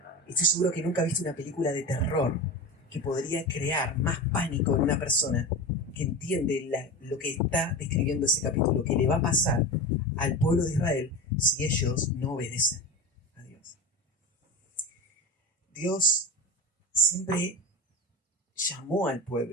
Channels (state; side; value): normal; both; correlation 0.26